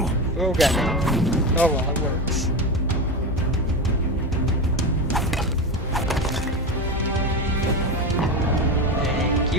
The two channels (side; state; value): both; normal; correlation 0.20